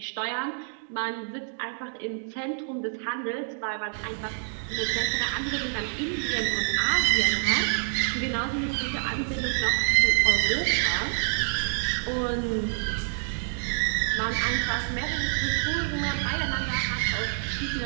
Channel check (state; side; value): silent; left; digital silence